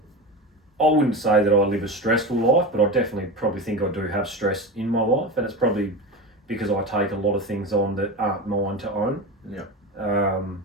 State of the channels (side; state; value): both; normal; correlation 0.24